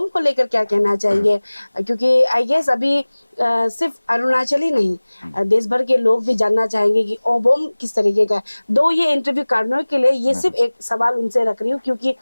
को लेकर क्या कहना चाहिए, क्योंकि आई गेस अभी सिर्फ अरुणाचल ही नहीं, देश भर के लोग भी जानना चाहेंगे कि ओबम किस तरीके का है। दो ये इंटरव्यू करने के लिए ये सिर्फ एक सवाल उनसे रख रही हूँ, क्योंकि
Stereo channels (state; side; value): inverted; both; correlation -1.00